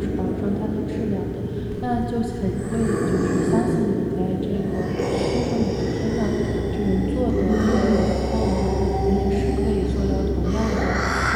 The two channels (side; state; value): both; identical; correlation 1.00